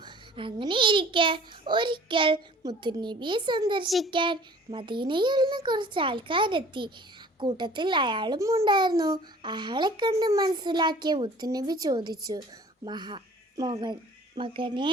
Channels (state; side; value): normal; both; correlation 0.49